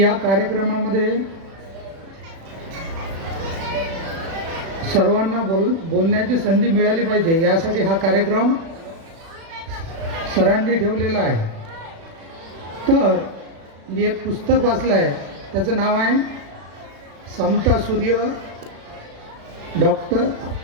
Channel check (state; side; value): late; left; 36 ms